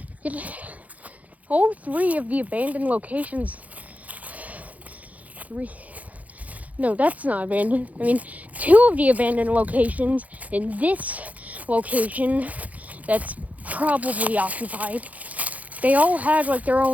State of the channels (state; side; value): late; left; 0.073 ms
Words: All 3 of the abandoned locations. 3. No, that's not abandoned. I mean, 2 of the abandoned locations in this location that's probably occupied. They all had like their